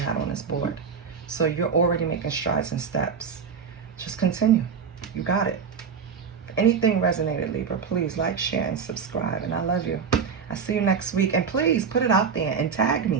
on this board. So you're already making strides and steps. Just continue. You got it. If anything resonated, Libra, please like, share, and subscribe. And I love you. I'll see you next week. And please put it out there and tag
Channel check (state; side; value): quieter; left; 6.2 dB